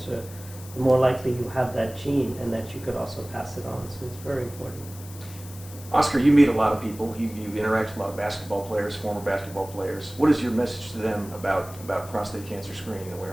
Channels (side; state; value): left; noise; hiss, 17 dB below the sound